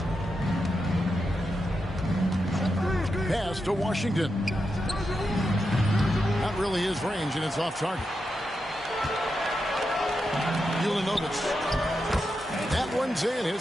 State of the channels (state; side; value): normal; both; correlation 0.87